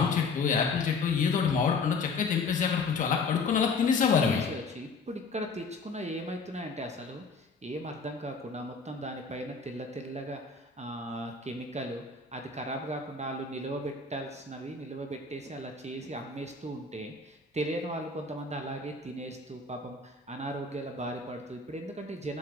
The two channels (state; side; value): quieter; right; 4.2 dB